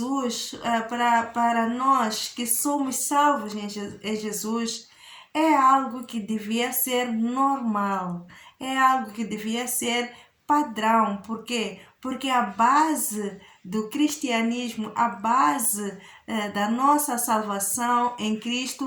para nós que somos salvos em Jesus, é algo que devia ser normal, é algo que devia ser padrão. Por quê? Porque a base do cristianismo, a base da nossa salvação em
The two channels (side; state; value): both; identical; correlation 1.00